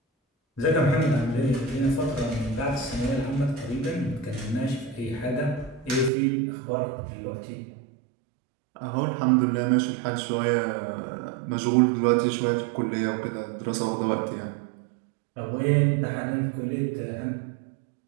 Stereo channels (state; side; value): drops out; left; at 6.1 s